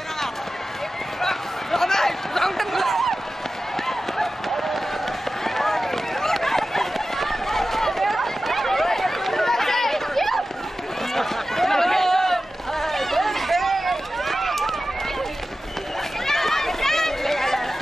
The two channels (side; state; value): both; normal; correlation 0.94